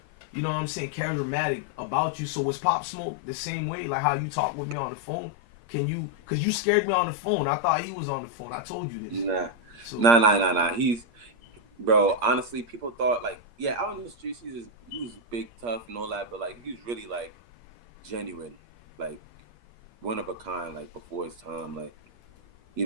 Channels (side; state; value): left; late; 8.5 ms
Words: you know what I'm saying, charismatic about you. So was Pop Smoke the same way? Like how you talk with me on the phone? Can you? Because you scared me on the phone. I thought he was on the phone. I told you this. Nah. Bro, honestly, people thought like, yeah, out in the streets, he was big, tough, and all that, but like, he was really like genuine, like one of a kind, like before his time, like, you